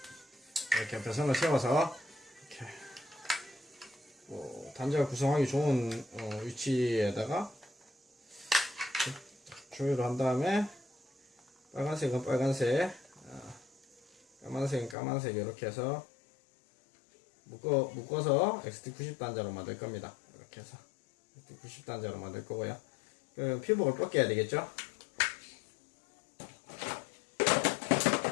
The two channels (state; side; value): drops out; right; at 15.0 s